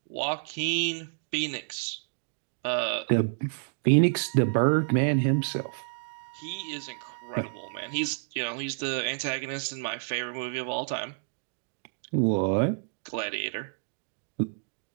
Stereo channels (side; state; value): left; silent; digital silence